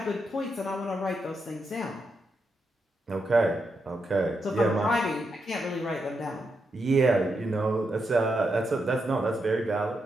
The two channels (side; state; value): both; normal; correlation 0.83